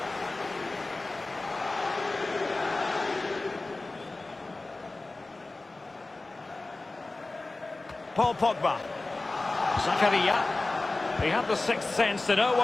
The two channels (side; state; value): right; quieter; 3.1 dB